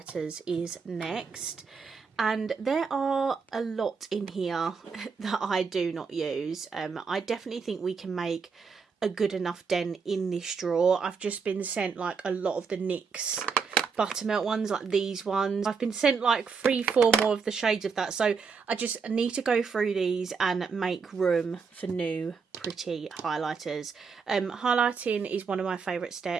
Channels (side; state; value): left; quieter; 5.4 dB